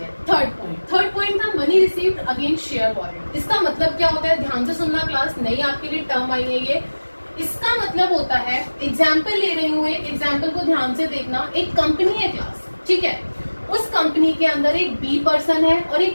हैं। थर्ड पॉइंट था money received against share warrant. इसका मतलब क्या होता है, ध्यान से सुनना क्लास, नहीं आपके लिए टर्म आई है ये। इसका मतलब होता है, एग्जाम्पल ले रही हूँ, एक एग्जाम्पल को ध्यान से देखना। एक कंपनी है क्लास, ठीक है, उस कंपनी के अंदर एक बी पर्सन है और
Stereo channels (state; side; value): inverted; both; correlation -1.00